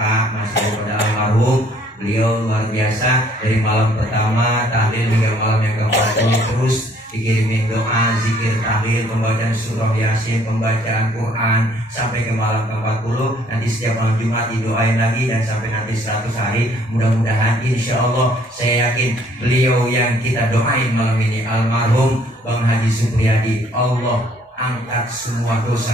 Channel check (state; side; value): normal; both; correlation 0.61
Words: masih pada almarhum. Beliau luar biasa dari malam pertama tahlil hingga malam yang ke-40 terus dikirimin doa, zikir, tahlil, pembacaan surah Yasin, pembacaan Quran sampai ke malam ke-40. Nanti setiap malam Jumat didoain lagi dan sampai nanti 100 hari. Mudah-mudahan insya Allah saya yakin beliau yang kita doain malam ini almarhum Bang Haji Supriyadi, Allah angkat semua